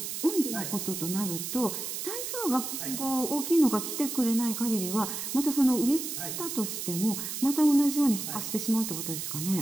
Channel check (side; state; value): right; noise; hiss, 5 dB below the sound